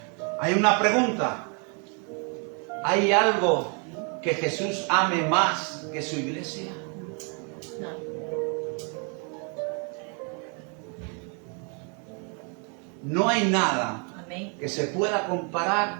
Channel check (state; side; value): quieter; left; 37.3 dB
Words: hay una pregunta. ¿Hay algo que Jesús ame más que su iglesia? No hay nada Amén. que se pueda